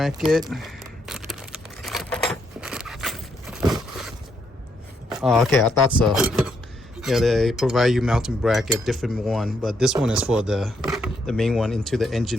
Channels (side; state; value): both; normal; correlation 0.76